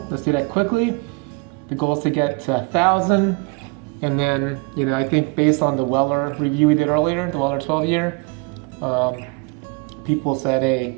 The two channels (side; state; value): left; quieter; 29.0 dB